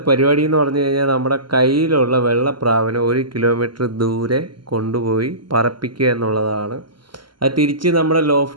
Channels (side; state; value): left; late; 0.72 ms